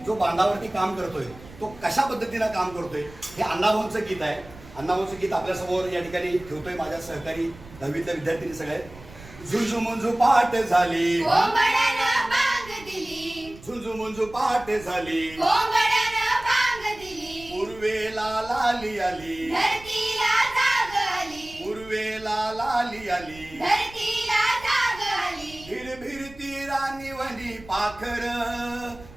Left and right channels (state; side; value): noise; right; rumble, 19 dB below the sound